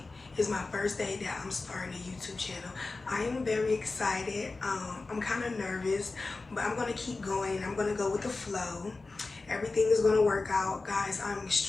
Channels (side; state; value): right; quieter; 3.6 dB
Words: is my first day that I'm starting a YouTube channel. I am very excited. I'm kind of nervous, but I'm gonna keep going. I'm gonna go with the flow. Everything is gonna work out, guys. I'm